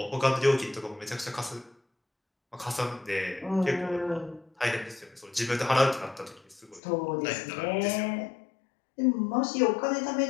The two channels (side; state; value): right; drops out; at 6.8 s